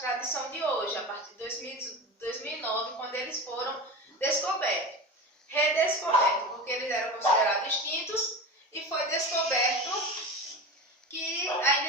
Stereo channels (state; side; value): normal; both; correlation 0.28